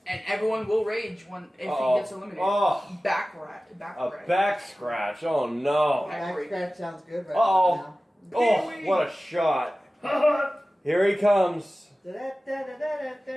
And everyone will rage if Uh-oh. he gets eliminated. Oh, Back rat. Back a rat. back scratch. Oh no. Back scratch sounds good right Uh-oh. now. Oh, what a shot. Here he comes.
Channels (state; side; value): normal; both; correlation 0.96